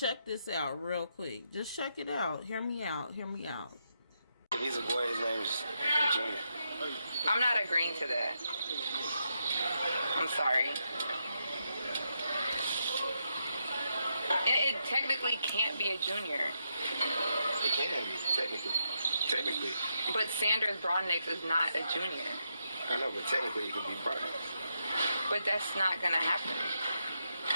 this out real quick. Just check it out. Hear me out. Hear me out. If he's a boy, his name's Junior. I'm not agreeing to that. I'm sorry. And it technically can't be a junior. It can be, technically. But Sanders Broadnix is not a junior. I know, but technically it can be Broadnix. But that's not gonna happen.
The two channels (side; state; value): both; inverted; correlation -0.81